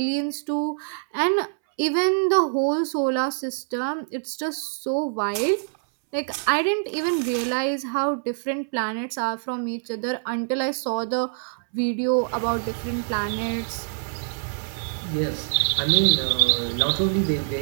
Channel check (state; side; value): silent; left; 62 dB below the other